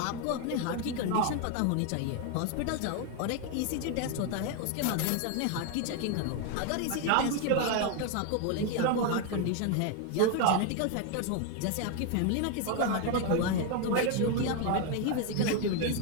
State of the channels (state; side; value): different; both; correlation 0.01